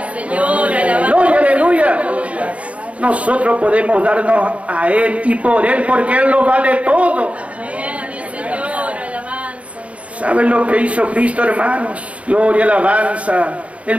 Gloria, aleluya. Nosotros podemos darnos a Él y por Él, porque Él lo vale todo. ¿Saben lo que hizo Cristo, hermanos? Gloria, alabanza.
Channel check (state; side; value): late; left; 0.064 ms